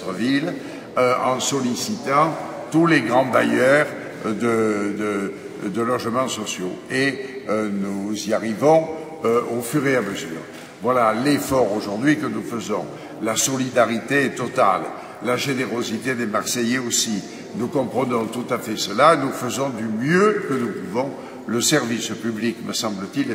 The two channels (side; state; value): both; identical; correlation 1.00